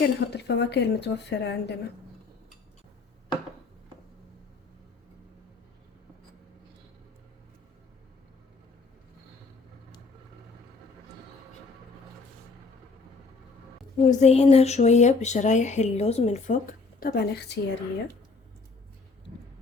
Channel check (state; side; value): quieter; right; 4.2 dB